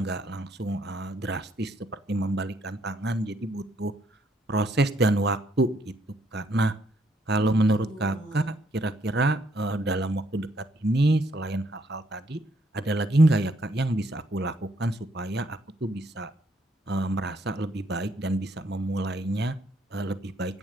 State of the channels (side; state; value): both; normal; correlation 0.70